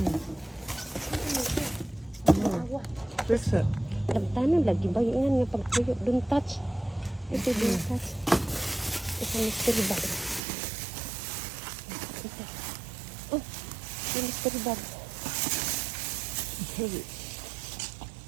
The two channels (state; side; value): drops out; left; at 10.4 s